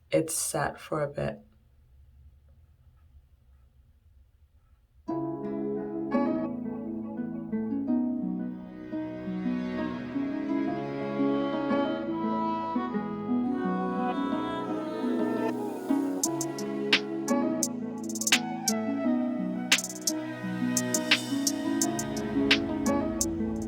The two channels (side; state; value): both; identical; correlation 1.00